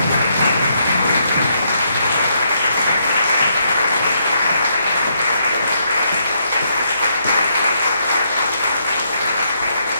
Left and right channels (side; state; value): both; inverted; correlation -0.75